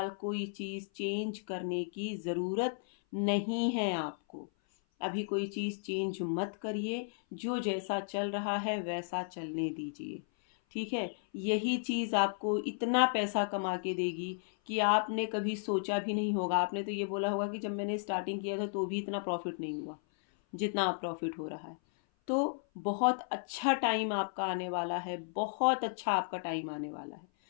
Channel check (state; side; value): silent; right; 55 dB below the other